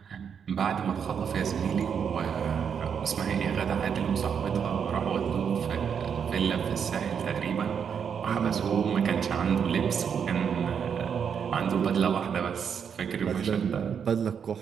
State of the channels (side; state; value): left; quieter; 7.3 dB